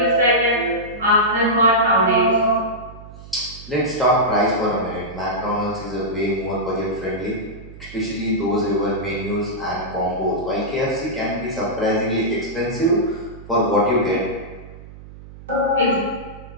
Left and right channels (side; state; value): right; noise; hum, 17 dB below the sound